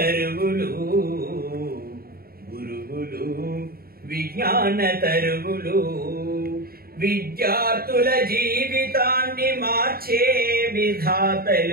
గురువులు విజ్ఞాన తరువులు, విద్యార్థుల జీవితాన్ని మార్చే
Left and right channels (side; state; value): left; late; 0.44 ms